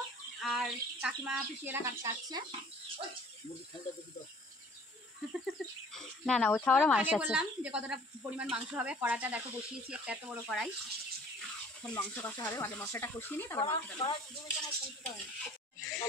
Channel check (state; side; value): normal; both; correlation 0.52